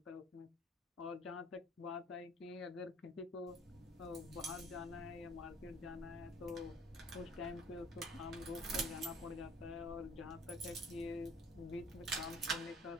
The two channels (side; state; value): both; normal; correlation 0.53